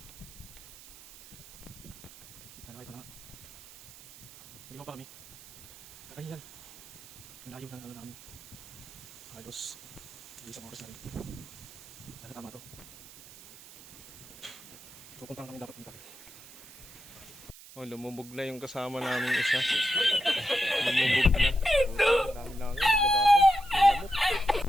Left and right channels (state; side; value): noise; right; hiss, 19 dB below the sound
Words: Ito na. Naligaw pa kami. Nakahingal. Malayo ng ano namin. Halos isang oras na rin. Sana tama to. Pupuntahan kami dapat dito. Oh, lumubog na yung kasama namin isa. Lumubog na. Ang dami lang yun. Naglabasan. Lamok.